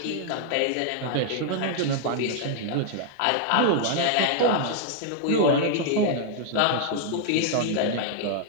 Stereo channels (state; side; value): different; both; correlation -0.01